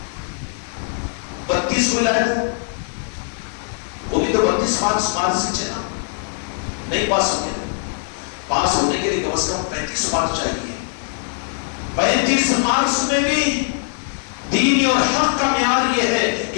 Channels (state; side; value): silent; right; digital silence